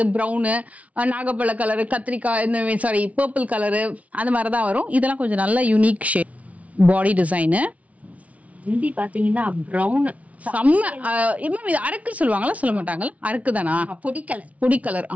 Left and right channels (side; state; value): left; late; 0.067 ms